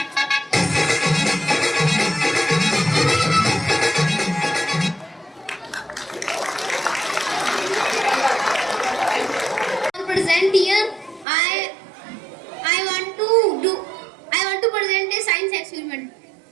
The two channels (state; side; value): drops out; left; at 11.2 s